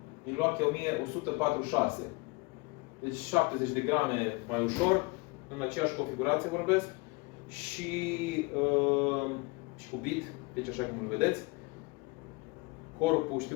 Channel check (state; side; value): quieter; right; 26.5 dB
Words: Milwaukee 1146. Deci 70 de grame mai ușor, în aceeași configurație vorbesc, și cu bit, deci așa cum îl vedeți. Corpul, știu